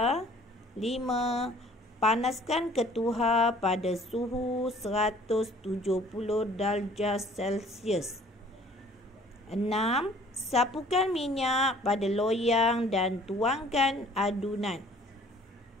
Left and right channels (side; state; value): both; normal; correlation 0.54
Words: 5. Panaskan ketuhar pada suhu 170 darjah Celsius. 6. Sapukan minyak pada loyang dan tuangkan adunan.